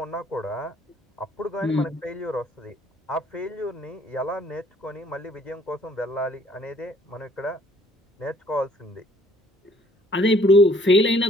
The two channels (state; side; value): normal; both; correlation 0.60